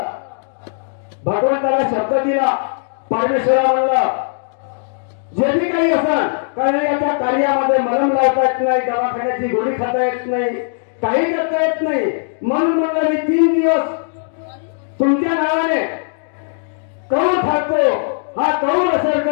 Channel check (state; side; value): silent; right; digital silence